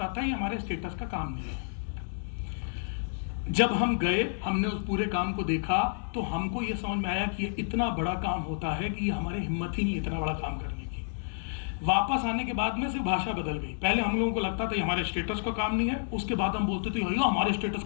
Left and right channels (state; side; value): silent; right; 58 dB below the other